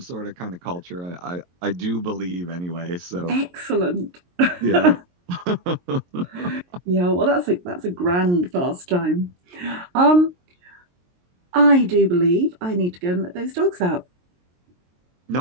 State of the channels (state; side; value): late; left; 23 ms